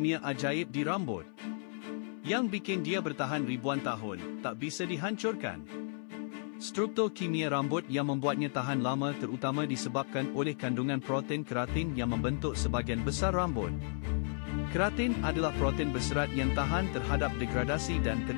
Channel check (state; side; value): silent; right; 55 dB below the other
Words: ajaib di rambut yang bikin dia bertahan ribuan tahun, tak bisa dihancurkan. Struktur kimia rambut yang membuatnya tahan lama terutama disebabkan oleh kandungan protein keratin yang membentuk sebahagian besar rambut. Keratin adalah protein berserat yang tahan terhadap degradasi dan